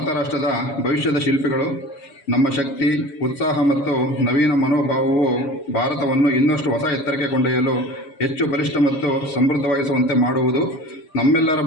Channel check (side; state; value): right; late; 7.1 ms